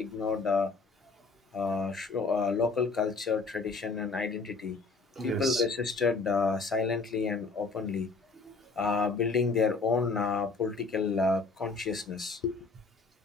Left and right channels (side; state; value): right; quieter; 4.0 dB